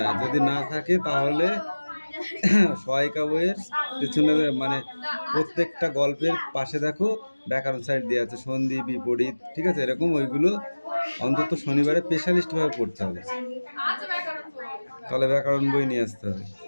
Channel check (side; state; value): both; inverted; correlation -1.00